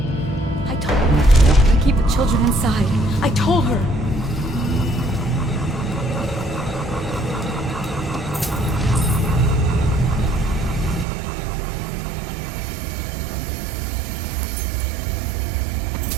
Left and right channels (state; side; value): drops out; left; at 11.1 s